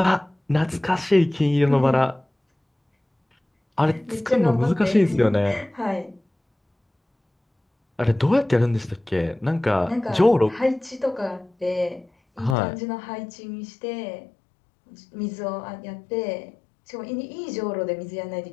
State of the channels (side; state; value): right; drops out; at 12.6 s